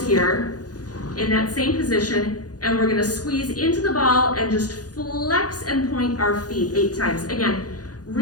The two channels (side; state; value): right; late; 0.68 ms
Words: here in that same position, and we're going to squeeze into the ball and just flex and point our feet 8 times. Again,